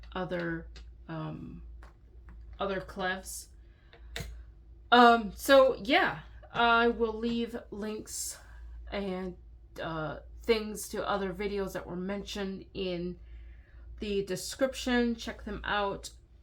other clefs. So yeah, I will leave links and things to other videos that were mentioned in the description. Check them out.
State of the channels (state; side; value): identical; both; correlation 1.00